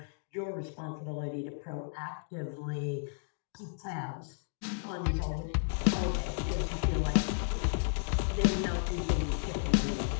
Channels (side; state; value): right; silent; digital silence